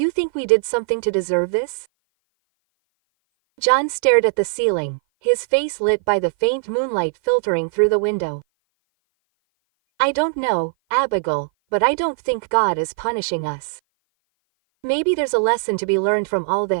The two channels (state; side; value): silent; left; 57 dB below the other